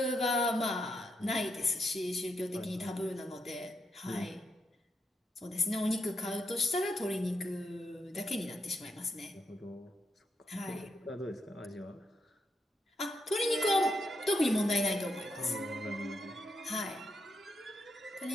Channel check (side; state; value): both; normal; correlation 0.81